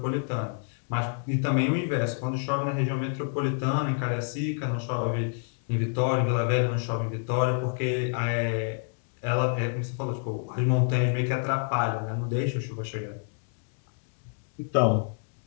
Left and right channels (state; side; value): silent; right; 59 dB below the other